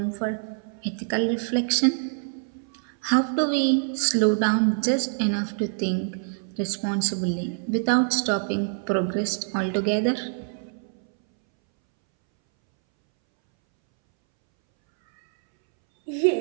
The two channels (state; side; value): silent; left; 62 dB below the other